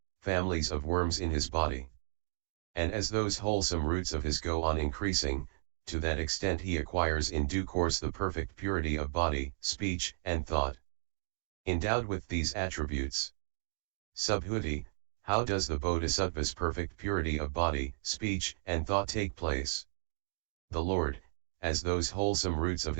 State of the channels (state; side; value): silent; left; digital silence